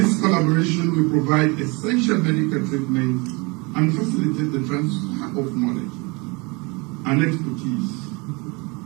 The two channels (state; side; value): quieter; left; 27.9 dB